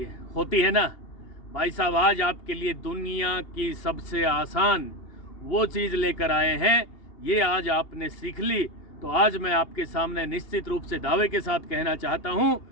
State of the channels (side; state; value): right; late; 2.8 ms